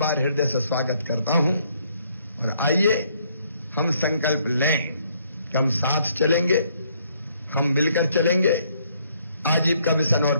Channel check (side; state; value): both; inverted; correlation -0.68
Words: हृदय से स्वागत करता हूं। और आइए हम संकल्प लें कि हम साथ चलेंगे, हम मिलकर चलेंगे, आजीविका मिशन और